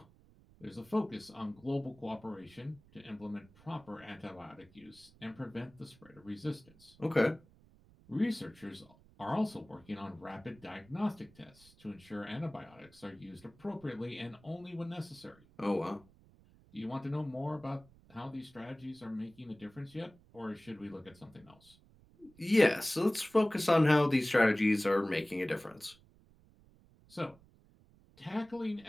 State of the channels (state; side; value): noise; right; rumble, 26 dB below the sound